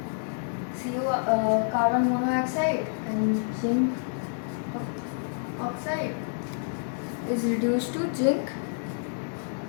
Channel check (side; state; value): right; silent; digital silence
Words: carbon monoxide and zinc oxide is reduced to zinc